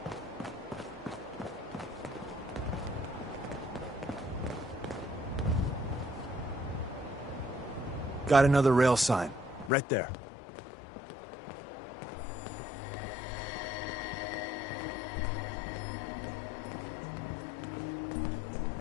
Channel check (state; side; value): drops out; right; at 9.7 s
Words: Got another rail sign, right there.